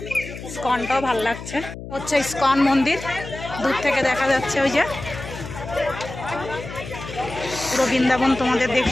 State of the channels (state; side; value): noise; left; hum, 11 dB below the sound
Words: ইসকনটাও ভাল লাগছে, হচ্ছে ইসকন মন্দির, দূর থেকে দেখা যাচ্ছে। ওই যে পুরো বৃন্দাবন তোমাদের